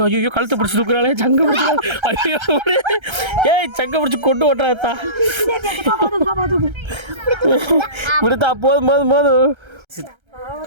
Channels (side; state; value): left; late; 1.3 ms